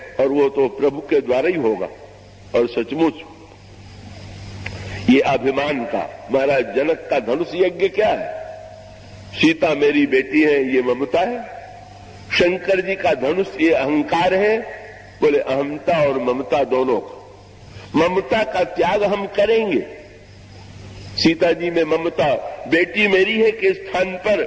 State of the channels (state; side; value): identical; both; correlation 1.00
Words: और वो तो प्रभु के द्वारा ही होगा। और सचमुच ये अभिमान का, महाराज जनक का धनुष यज्ञ क्या है? सीता मेरी बेटी है, ये ममता है। शंकर जी का धनुष ये अहंकार है। बोले अहमता और ममता दोनों का। ममता का त्याग हम करेंगे। सीता जी में ममता, बेटी मेरी है के स्थान पर